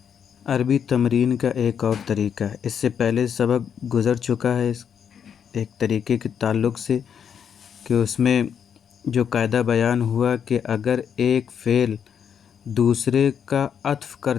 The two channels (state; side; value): quieter; right; 7.8 dB